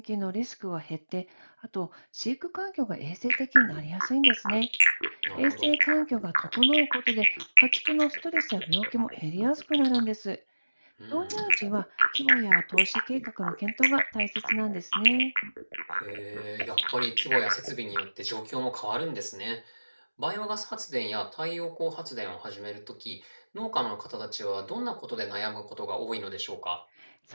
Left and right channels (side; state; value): both; inverted; correlation -1.00